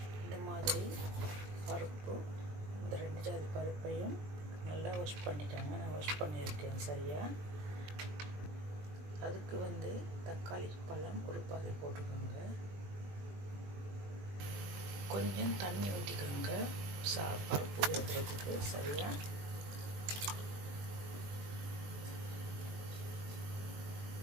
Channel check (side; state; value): left; late; 20 ms